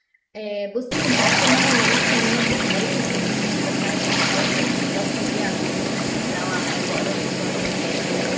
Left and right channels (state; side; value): identical; both; correlation 1.00